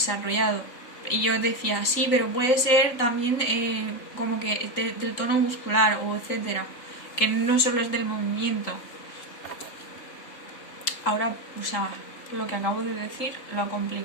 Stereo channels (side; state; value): right; late; 3.9 ms